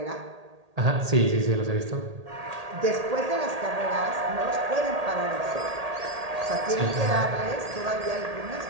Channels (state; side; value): late; left; 1.8 ms